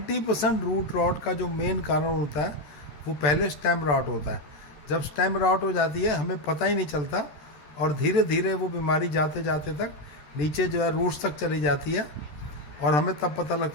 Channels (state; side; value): late; right; 13 ms